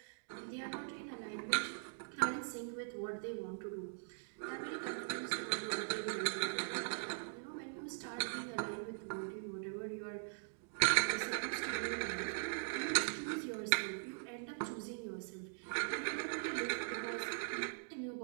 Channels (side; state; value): left; silent; digital silence